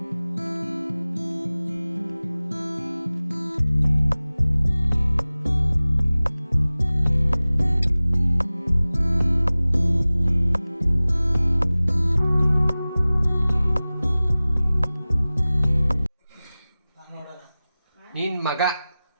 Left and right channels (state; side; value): inverted; both; correlation -0.98